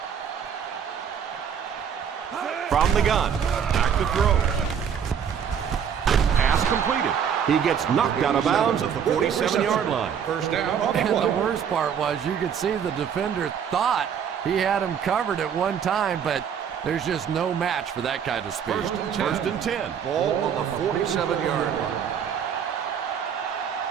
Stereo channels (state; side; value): quieter; left; 7.9 dB